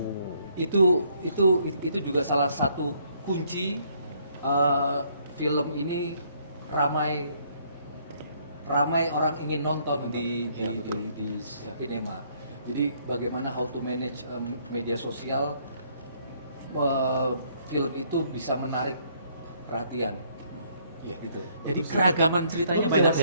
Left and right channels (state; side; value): inverted; both; correlation -0.67